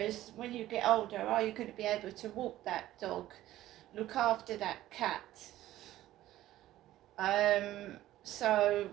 when you get older, are you going to be able to walk that dog, look after that cat? So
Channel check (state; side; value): quieter; left; 14.5 dB